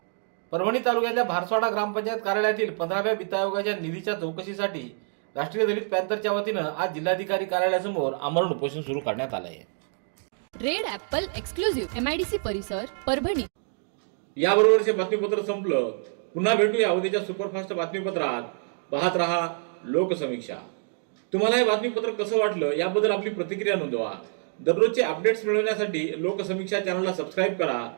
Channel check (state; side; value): silent; left; 60 dB below the other